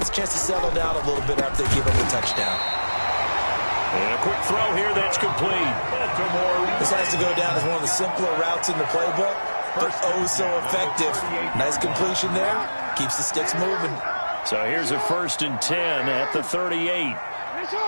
a chance to settle down a little bit after they give up a touchdown. And a quick throw here that's complete. This has to go down as one of the simpler routes in the playbook, but oh so effective. Nice completion there. Keeps the sticks moving. So here's a 1st and 10 at the 38.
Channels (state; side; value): inverted; both; correlation -1.00